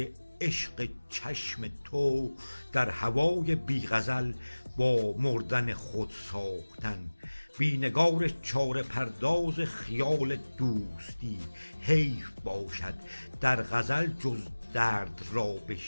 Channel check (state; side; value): inverted; both; correlation -1.00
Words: عشق چشم تو، در هوای بی غزل با مردن خود ساختن. بی نگار چاره پرداز خیال دوستی، حیف باشد در غزل جز درد را